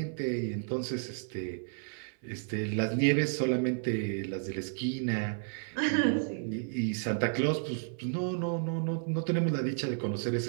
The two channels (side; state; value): left; silent; 55 dB below the other